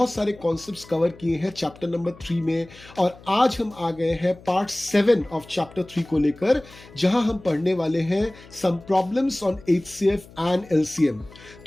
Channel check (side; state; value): left; noise; hum, 22 dB below the sound